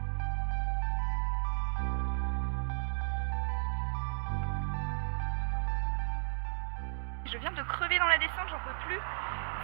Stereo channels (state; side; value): silent; left; digital silence